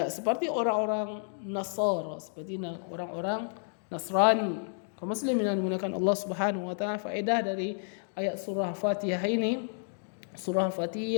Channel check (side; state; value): right; silent; digital silence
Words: seperti orang-orang Nasara, seperti orang-orang Nasrani. Kaum muslimin yang dimuliakan Allah Subhanahu wa taala, faedah dari ayat surah Al-Fatihah ini,